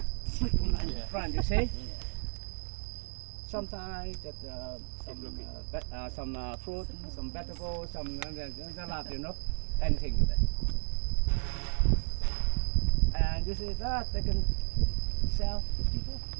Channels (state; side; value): silent; left; 56 dB below the other